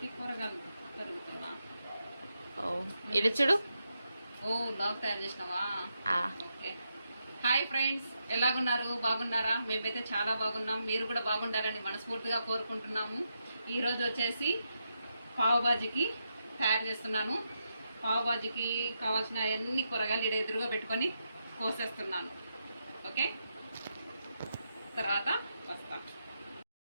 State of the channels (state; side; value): inverted; both; correlation -0.84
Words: కూరగాయలు తరుగుతున్నా. ఓ ఇటు చూడు. ఓ లాగ్ తయారు చేసినావా? ఓకే. హాయ్ ఫ్రెండ్స్, ఎలాగున్నారు? బాగున్నారా? మేమైతే చాలా బాగున్నాం. మీరు కూడా బాగుండాలని మనస్ఫూర్తిగా కోరుకుంటున్నాము. ఈరోజు వచ్చేసి పావు బాజీకి తయారు చేస్తున్నాను. పావు బాజీకి కావాల్సిన అన్ని కూరగాయలు ఇక్కడ ఎదురుగా పెట్టుకొని కోసేస్తున్నాను. ఓకే, తర్వాత వస్తాం.